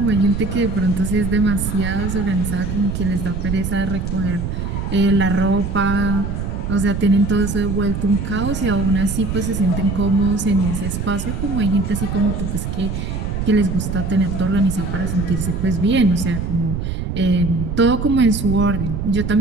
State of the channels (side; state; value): right; noise; rumble, 3 dB below the sound